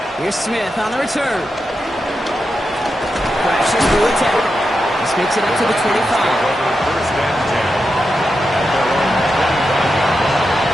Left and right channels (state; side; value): normal; both; correlation 0.88